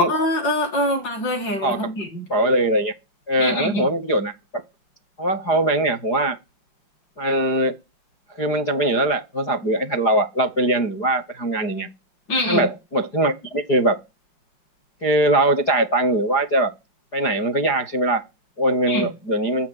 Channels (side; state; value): right; late; 4.9 ms